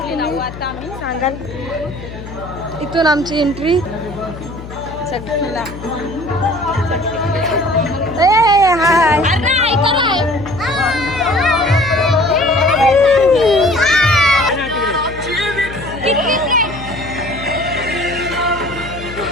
सांगाल. इथून आमची एंट्री चटकीला. हाय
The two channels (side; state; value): left; noise; hum, 13 dB below the sound